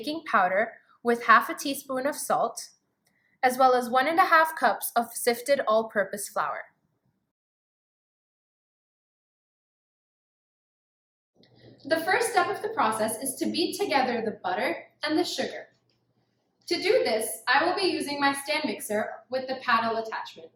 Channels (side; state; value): both; identical; correlation 1.00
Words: powder with half a teaspoon of salt, as well as 1.5 cups of sifted all-purpose flour. The first step of the process is to beat together the butter and the sugar. To do this, I will be using my stand mixer with the paddle attachment.